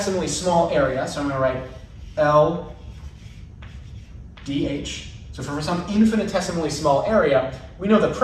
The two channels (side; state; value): both; identical; correlation 1.00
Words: small area, so I'm going to write L dh, so for some infinitesimally small area, we know the